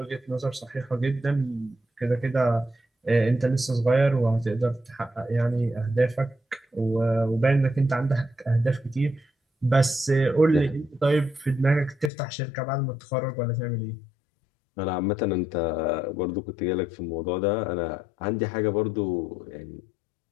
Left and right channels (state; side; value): drops out; right; at 12.1 s